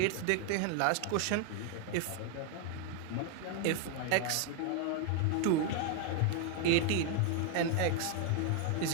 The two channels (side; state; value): both; different; correlation 0.00